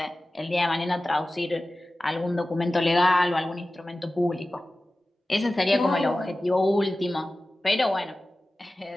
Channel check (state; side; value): normal; both; correlation 0.96